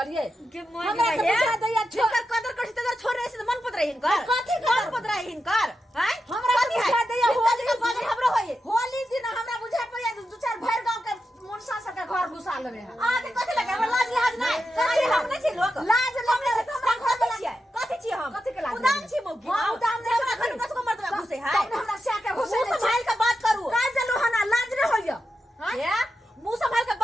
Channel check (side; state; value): both; normal; correlation 0.89